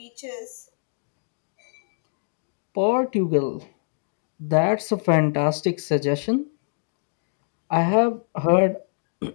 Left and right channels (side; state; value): right; silent; digital silence